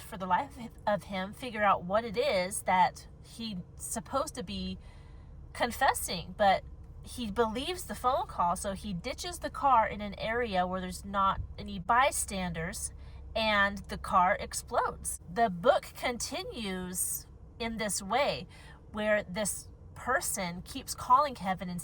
the life of him, figure out what it is that he's supposed to be confessing. But he believes the phone call, so he ditches the car in an area where there's not any bystanders, and the car explodes. The book continues in this way, where this person keeps calling Kevin and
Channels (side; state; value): both; identical; correlation 1.00